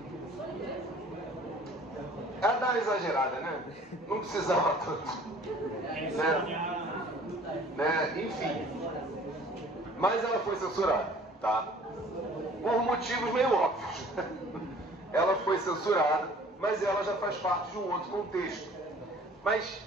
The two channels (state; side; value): normal; both; correlation 0.51